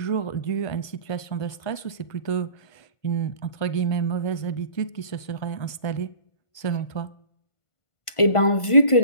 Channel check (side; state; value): right; late; 1.5 ms